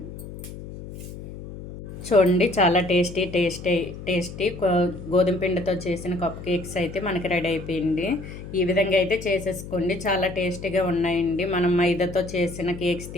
చూడండి, చాలా టేస్టీ గోధుమ పిండితో చేసిన కప్ కేక్స్ అయితే మనకి రెడీ అయిపోయింది. ఈ విధంగా అయితే చేసేసుకోండి. చాలా టేస్టీగా ఉన్నాయండి. మనం మైదాతో చేసిన కేక్స్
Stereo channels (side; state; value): left; noise; hum, 12 dB below the sound